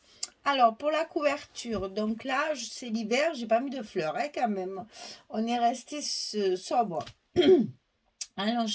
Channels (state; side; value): identical; both; correlation 1.00